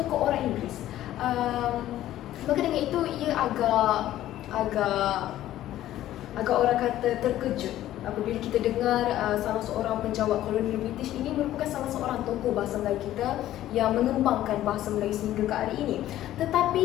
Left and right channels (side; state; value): right; quieter; 13.5 dB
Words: orang Inggeris. Maka dengan itu ia agak orang kata terkejut apabila kita dengar salah seorang penjawat kolonial British ini merupakan salah seorang tokoh bahasa Melayu kita yang mengembangkan bahasa Melayu sehingga ke hari ini.